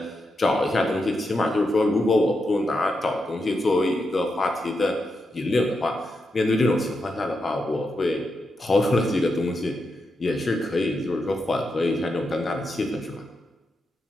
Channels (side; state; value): both; normal; correlation 0.86